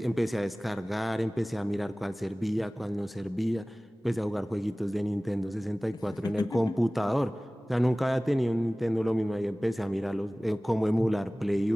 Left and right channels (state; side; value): normal; both; correlation 0.98